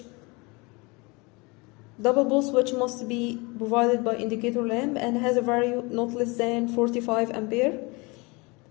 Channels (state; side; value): quieter; right; 26.8 dB